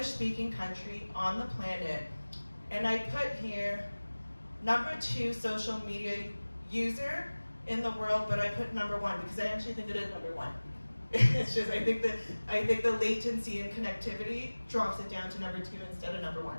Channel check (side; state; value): both; inverted; correlation -1.00